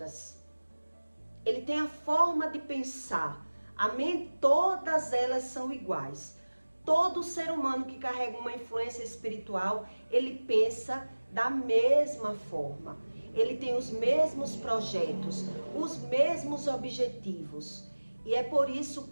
Ele tem a forma de pensar. Todas elas são iguais. Todo ser humano que carrega uma influência espiritual, ele pensa da mesma forma. Ele tem os mesmos projetos, os mesmos objetivos. E é por isso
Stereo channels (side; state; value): both; inverted; correlation -1.00